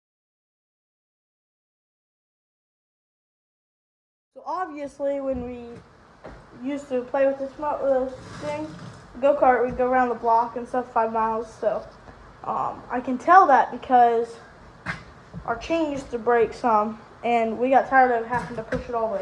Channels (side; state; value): both; identical; correlation 1.00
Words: So obviously, when we used to play with this thing, go-kart, we'd go around the block and stuff, 5 miles. So I can tell that because our chain used to break some, and we got tired of having to push it all the